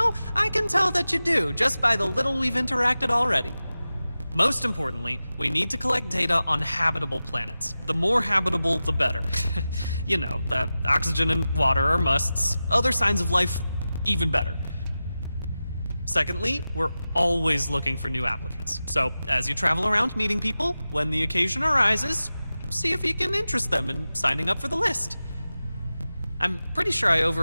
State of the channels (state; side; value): inverted; both; correlation -0.94